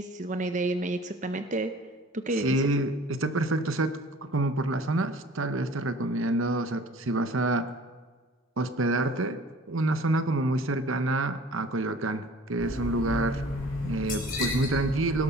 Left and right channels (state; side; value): normal; both; correlation 0.47